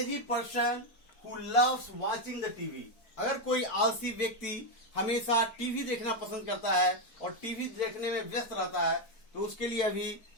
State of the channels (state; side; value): late; right; 4.5 ms